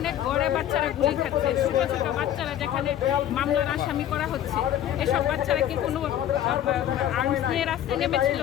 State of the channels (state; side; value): quieter; right; 11.3 dB